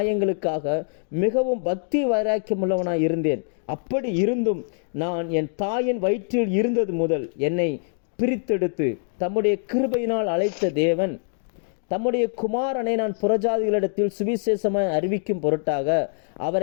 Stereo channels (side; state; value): right; silent; digital silence